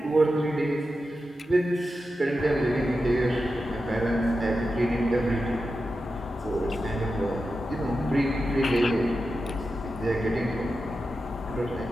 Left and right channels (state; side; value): normal; both; correlation 0.91